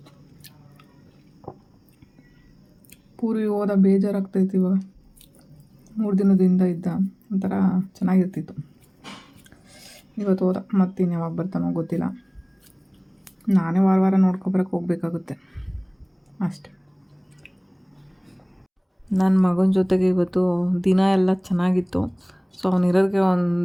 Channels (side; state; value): both; identical; correlation 1.00